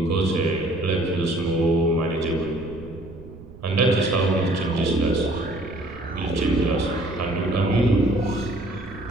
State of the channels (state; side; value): noise; right; rumble, 18 dB below the sound